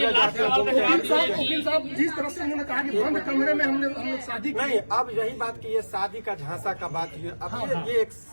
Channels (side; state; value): both; inverted; correlation -1.00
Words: जाते हैं। वकील साहब जिस तरह से उन्होंने कहा कि बंद कमरे में हम लोग शादी नहीं, अब यही बात की ये शादी का झांसा का बात है। अब ये एक